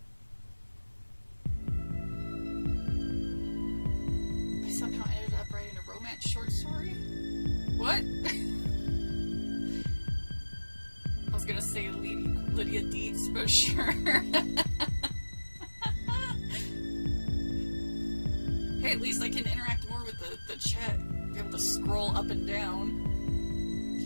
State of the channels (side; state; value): both; inverted; correlation -1.00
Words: somehow ended up writing a romance short story? What? I was gonna say lead Hey, at least I can interact more with the chat. Be able to scroll up and down.